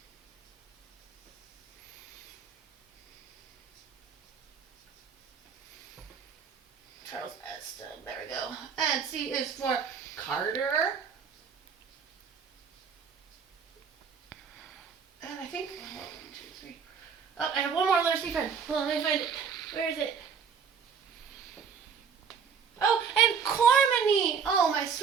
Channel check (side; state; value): left; quieter; 6.4 dB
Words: Charles Eston, there we go. And C is for Carter. And I think, 1, 2, 3, Oh, I have one more letter C friend. Hold on, let me find it. Where is it? Oh, and Cormany. Oh, my